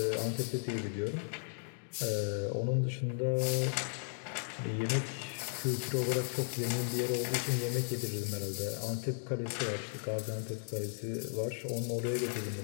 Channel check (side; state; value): right; silent; digital silence